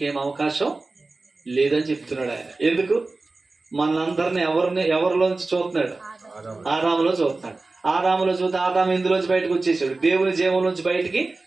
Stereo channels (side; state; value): left; quieter; 3.5 dB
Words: అవకాశం లేదని చెప్తున్నాడు ఆయన. ఎందుకు? మనందరిని ఎవరిలోంచి చూస్తున్నాడు? ఆదాములో చూస్తున్నాడు. ఆదాములో చూస్తే ఆదాము ఇందులోంచి బయటకు వచ్చేసాడు, దేవుని జీవంలోంచి బయటికి